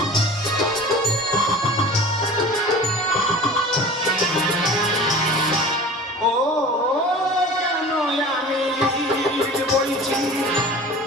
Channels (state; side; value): normal; both; correlation 0.39